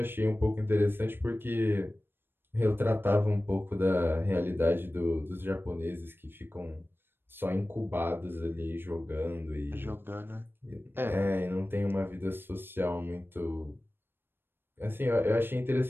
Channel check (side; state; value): left; late; 0.10 ms